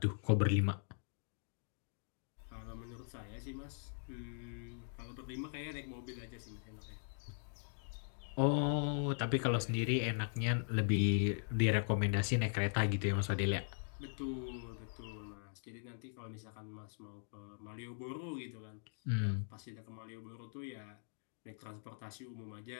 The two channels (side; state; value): right; silent; digital silence